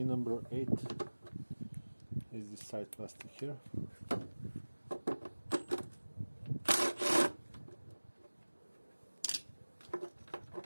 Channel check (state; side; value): inverted; both; correlation -1.00